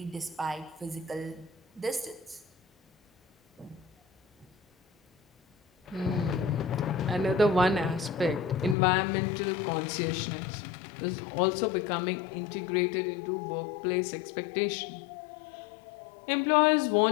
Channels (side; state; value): right; drops out; at 8.8 s